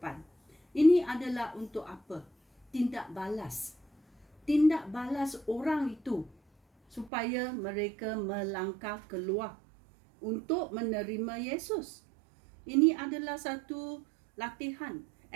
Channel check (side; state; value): left; drops out; at 7.1 s